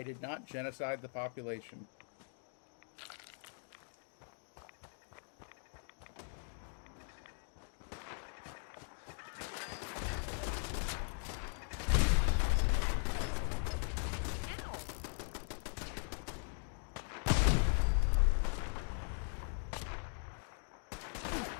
did not genocide the population.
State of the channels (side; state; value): right; silent; 51 dB below the other